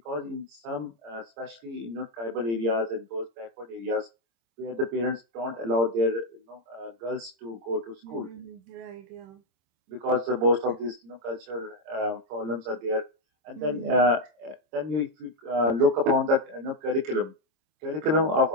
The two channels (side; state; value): left; late; 26 ms